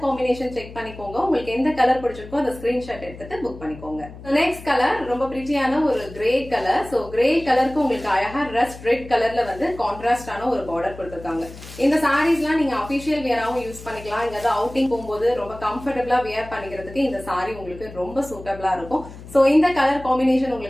காம்பினேஷன் செக் பண்ணிக்கோங்க. உங்களுக்கு எந்த கலர் பிடிச்சிருக்கோ அந்த ஸ்கிரீன்ஷாட் எடுத்துட்டு புக் பண்ணிக்கோங்க. நெக்ஸ்ட் கலர் ரொம்ப பிரிட்டியான ஒரு கிரே கலர். சோ கிரே கலருக்கு உங்களுக்கு அழகா ரஸ்ட் ரெட் கலர்ல வந்து கான்ட்ராஸ்டான ஒரு பார்டர் கொடுத்திருக்காங்க. இந்த சாரீஸ்லாம் நீங்க அபிஷியல் வியராவும் யூஸ் பண்ணிக்கலாம். இங்க அவுட்டிங் போகும்போது ரொம்ப கம்ஃபர்டபுளா வியர் பண்ணிக்கிறதுக்கு இந்த சாரி உங்களுக்கு ரொம்ப சூட்டபிளா இருக்கும். சோ இந்த கலர் காம்பினேஷன்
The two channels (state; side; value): noise; left; hum, 16 dB below the sound